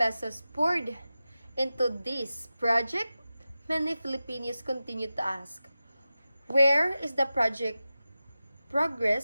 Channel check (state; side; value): inverted; both; correlation -0.94